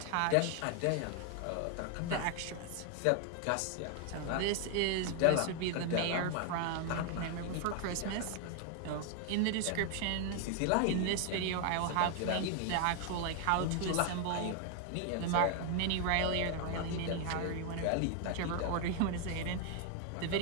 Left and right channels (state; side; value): different; both; correlation 0.00